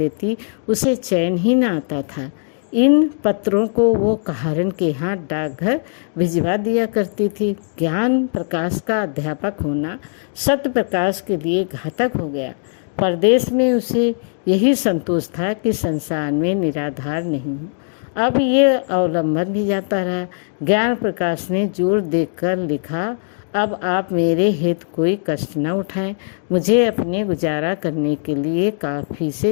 उसे चैन ही न आता था। इन पत्रों को वो कहारन के हाथ डाकघर भिजवा दिया करती थी। ज्ञान प्रकाश का अध्यापक होना सत्य प्रकाश के लिए घातक हो गया। परदेश में उसे यही संतोष था कि संसार में निराधार नहीं हूँ। अब ये अवलंबन भी जाता रहा। ज्ञान प्रकाश ने जोर देकर लिखा, अब आप मेरे हेतु कोई कष्ट न उठाएं। मुझे अपने गुजारा करने के लिए काफ़ी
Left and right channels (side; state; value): right; silent; digital silence